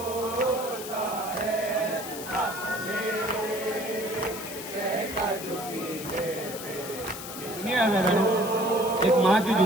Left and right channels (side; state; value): left; noise; hiss, 10 dB below the sound